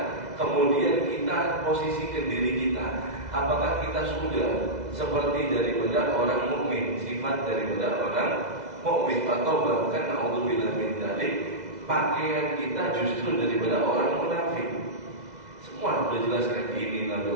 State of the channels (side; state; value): left; late; 2.0 ms